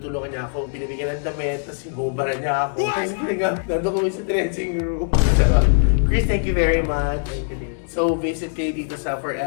niya ako, binibigyan ng damit, tapos sinubaran niya ako. Kasi nandun kami sa dressing room. Chris, thank you very much. So, visit kayo dito sa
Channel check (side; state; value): right; silent; digital silence